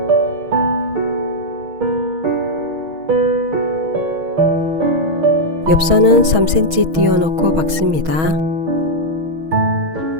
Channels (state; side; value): late; left; 6.3 ms